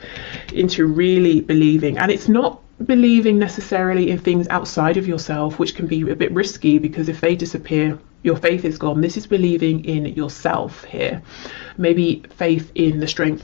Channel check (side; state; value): right; quieter; 26.0 dB